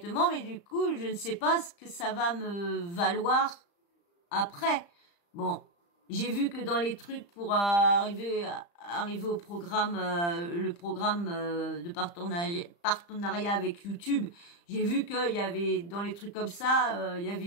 mais du coup, je ne sais pas ce que ça va me valoir après. Bon, j'ai vu que dans les trucs pour arriver au programme, le programme de partenariat avec YouTube, j'ai vu qu'il y avait dans les trucs comme ça,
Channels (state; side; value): late; right; 35 ms